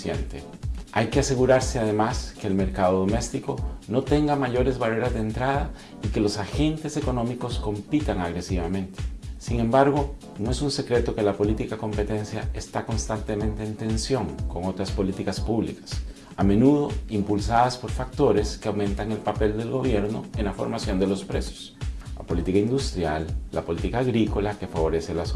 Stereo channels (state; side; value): identical; both; correlation 1.00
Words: Hay que asegurarse además que el mercado doméstico no tenga mayores barreras de entrada y que los agentes económicos compitan agresivamente. Sin embargo, no es un secreto que la política de competencia está constantemente en tensión con otras políticas públicas, a menudo impulsadas por factores que aumentan el papel del gobierno en la formación de los precios. La política industrial, la política agrícola que favorece la